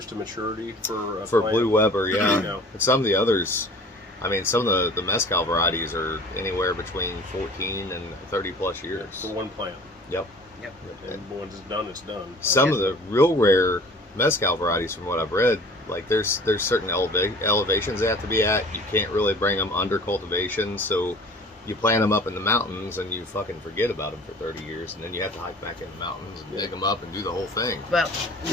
to maturity for a plant? Blue Weber? Yeah. No. And some of the others, I mean, some of the mezcal varieties are anywhere between 14 and 30 plus years. For one plant. Yep. And once it's done, it's done. Some of the real rare mezcal varieties, from what I've read, like there's certain elevations they have to be at. You can't really bring them under cultivation, so you plant them up in the mountains and you fucking forget about them for 30 years, and then you have to hike back in the mountains and dig them up and do the whole thing. Well,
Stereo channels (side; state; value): both; normal; correlation 0.46